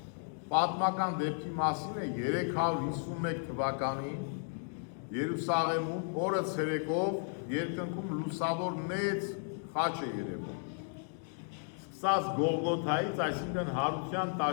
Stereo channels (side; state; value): right; silent; 55 dB below the other